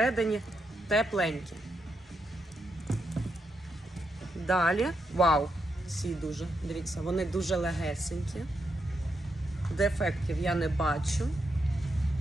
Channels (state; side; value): normal; both; correlation 0.82